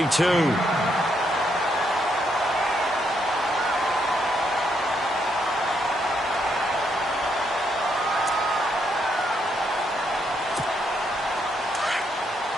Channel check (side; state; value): both; normal; correlation 0.76